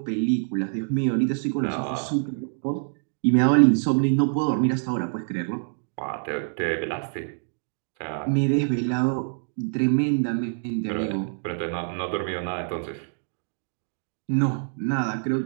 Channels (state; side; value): silent; left; digital silence